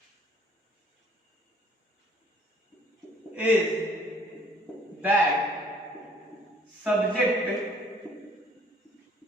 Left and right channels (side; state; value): both; normal; correlation 0.59